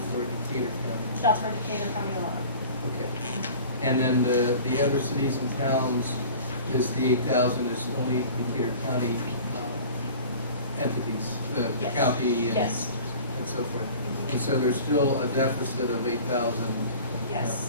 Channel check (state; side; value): inverted; both; correlation -0.42